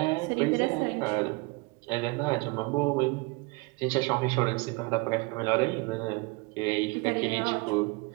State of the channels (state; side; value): quieter; left; 26.6 dB